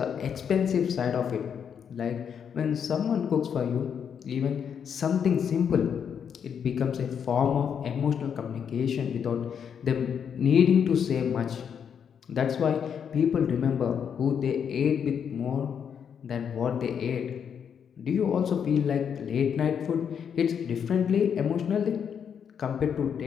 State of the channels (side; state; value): right; quieter; 7.6 dB